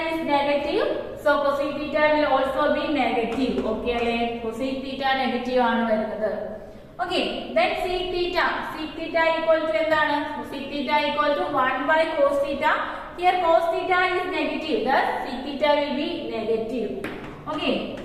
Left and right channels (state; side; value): identical; both; correlation 1.00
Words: is negative, so cosec theta will also be negative. Okay അല്ലേ, cosec theta negative ആണ് വരുന്നത്. Okay, then sec theta. Sec theta equal to എന്താണ്? Sec theta equal to 1 by cos theta. Here cos theta is negative, thus sec theta will be negative. Okay,